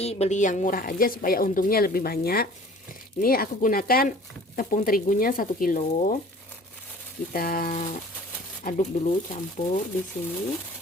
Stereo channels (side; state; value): both; normal; correlation 0.48